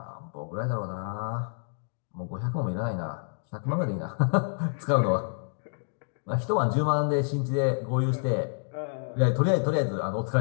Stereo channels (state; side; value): silent; right; digital silence